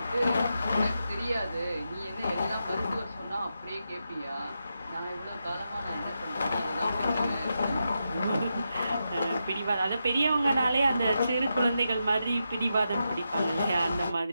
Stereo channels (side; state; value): both; inverted; correlation -0.86